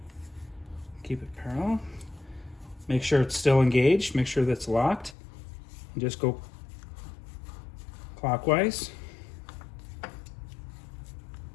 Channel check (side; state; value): right; drops out; at 5.2 s